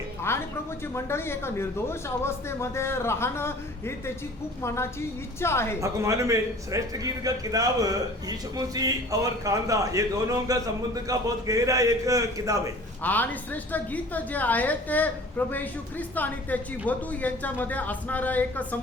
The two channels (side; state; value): both; normal; correlation 0.46